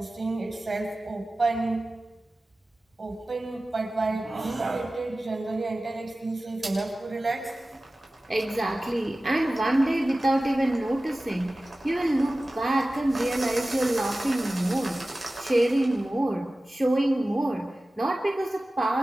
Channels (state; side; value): normal; both; correlation 0.96